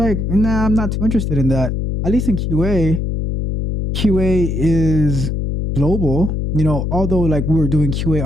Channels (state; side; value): noise; left; hum, 1 dB below the sound